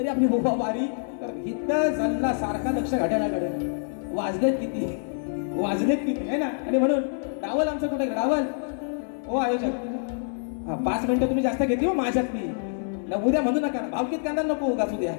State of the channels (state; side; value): silent; right; 61 dB below the other